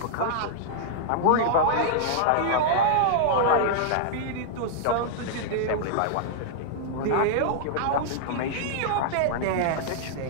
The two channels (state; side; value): different; both; correlation -0.01